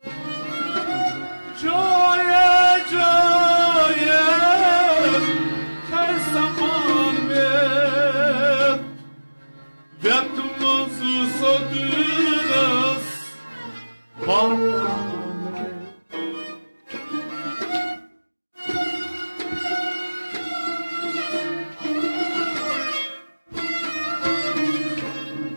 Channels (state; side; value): inverted; both; correlation -1.00